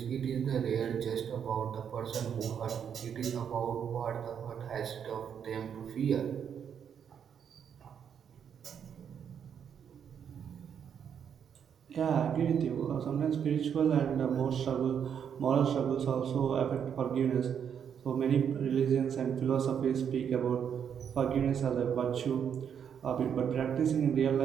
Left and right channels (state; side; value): quieter; left; 8.0 dB